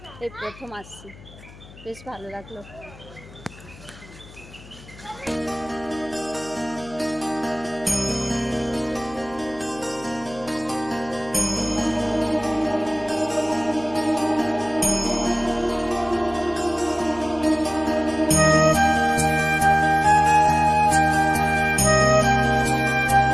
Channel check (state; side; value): noise; left; hum, 20 dB below the sound